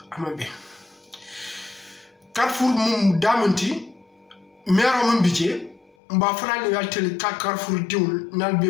amabe Carrefour mum damanti mero mon budget mba frale yaltel Carrefour diul nal be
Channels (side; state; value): right; drops out; at 5.9 s